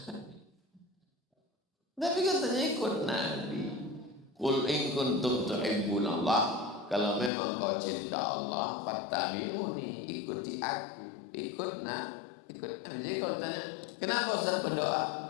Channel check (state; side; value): drops out; right; at 7.3 s